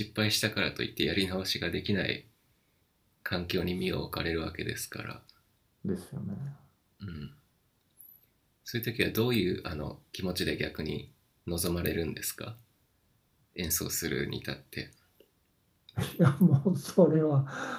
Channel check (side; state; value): both; identical; correlation 1.00